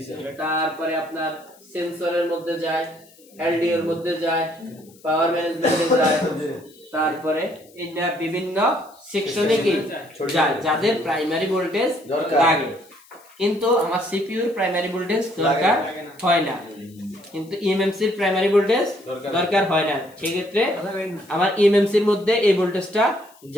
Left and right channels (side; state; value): left; noise; hiss, 27 dB below the sound